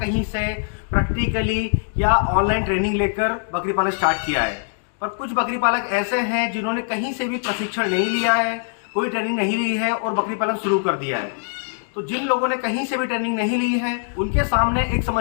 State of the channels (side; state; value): right; silent; digital silence